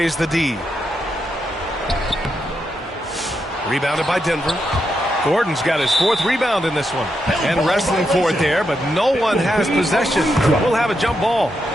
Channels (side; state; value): both; normal; correlation 0.83